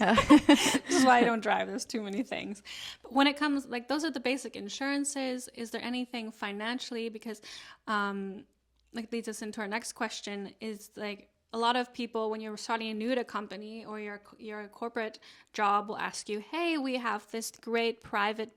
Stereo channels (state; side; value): identical; both; correlation 1.00